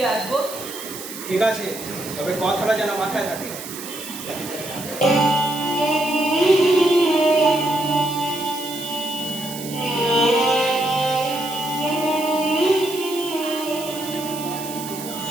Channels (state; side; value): noise; right; hiss, 11 dB below the sound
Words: আসবো। ঠিক আছে, তবে কথাটা যেন মাথায় থাকে।